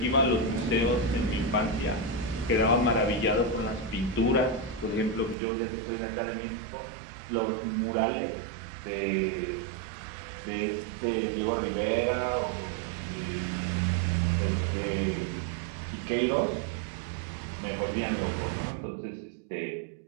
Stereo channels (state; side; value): drops out; left; at 5.4 s